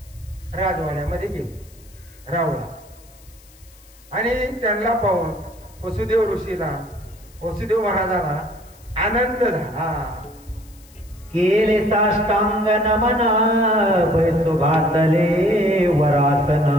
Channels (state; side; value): noise; left; hiss, 26 dB below the sound